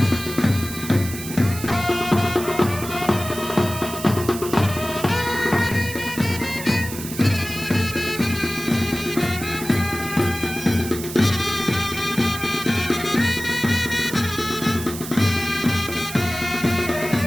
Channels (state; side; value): noise; right; hiss, 10 dB below the sound